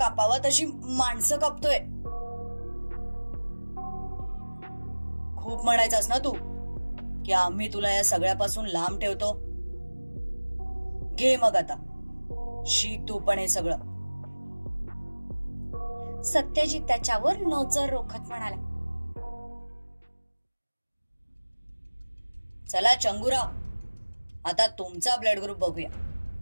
तशी माणसं कापतोय. खूप म्हणायचंस ना तू की आम्ही तुला या सगळ्यापासून लांब ठेवतो. घे मग आता, शिक तू पण हे सगळं. सत्यजित त्याच्यावर नजर रोखत म्हणाला. चला चंगुराव, आता तुमचा ब्लड ग्रुप बघूया.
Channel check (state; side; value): inverted; both; correlation -1.00